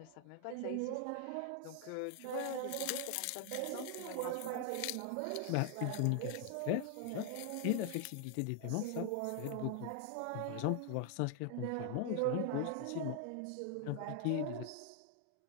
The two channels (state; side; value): different; both; correlation 0.00